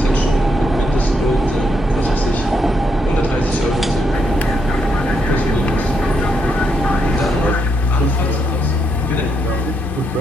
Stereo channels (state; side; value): normal; both; correlation 0.78